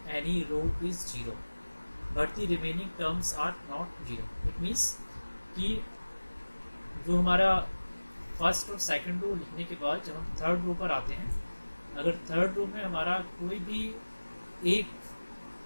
any row is 0 but the remaining terms are not 0, it means कि जो हमारा first और second row लिखने के बाद जब हम थर्ड रो पर आते हैं, अगर थर्ड रो में हमारा कोई भी एक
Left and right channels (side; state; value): both; inverted; correlation -1.00